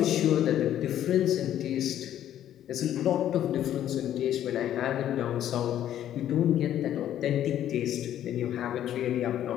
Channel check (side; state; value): right; quieter; 11.4 dB